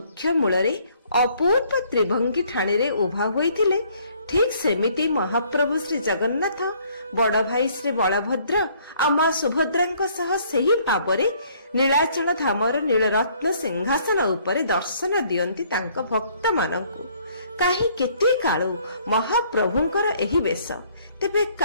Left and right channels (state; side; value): inverted; both; correlation -0.62